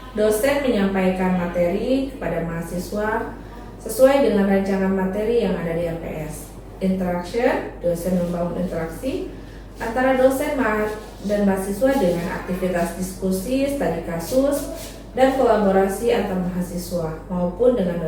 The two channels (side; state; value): both; identical; correlation 1.00